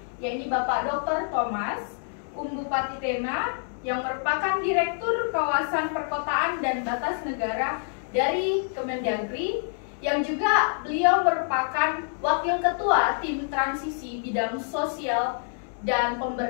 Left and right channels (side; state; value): right; silent; digital silence